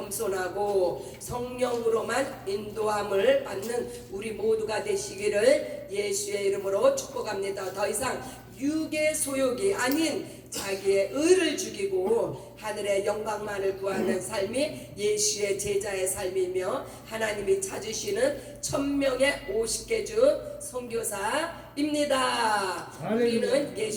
성령으로만 인도함을 받는 우리 모두가 되시기를 예수의 이름으로 축복합니다. 더 이상 육의 소욕이 아닌 자기의 의를 죽이고 하늘의 영광만을 구하는 삶이 예수의 제자의 삶이며 하나님이 찾으시는 1000명의 50개주 선교사입니다. 우리는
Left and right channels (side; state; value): both; identical; correlation 1.00